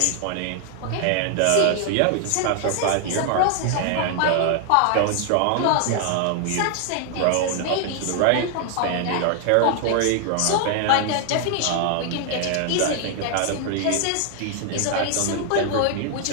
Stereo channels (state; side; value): different; both; correlation 0.00